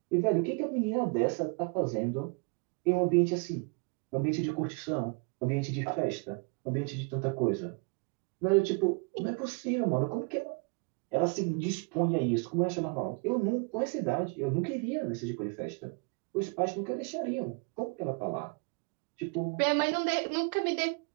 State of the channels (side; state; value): left; quieter; 32.9 dB